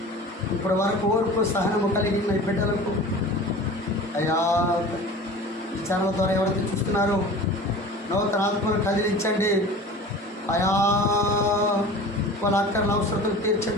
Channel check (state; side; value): normal; both; correlation 0.39